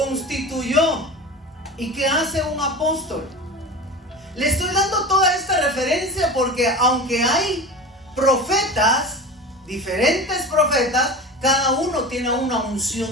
¿Y qué hace un apóstol? Le estoy dando toda esta referencia porque aunque hay profetas, diferentes profetas, cada uno tiene una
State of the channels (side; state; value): both; normal; correlation 0.31